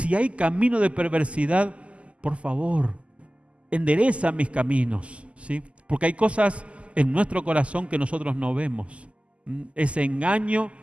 camino de perversidad, por favor, endereza mis caminos, ¿sí? Porque hay cosas en nuestro corazón que nosotros no vemos. Ese engaño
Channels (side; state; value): left; late; 0.059 ms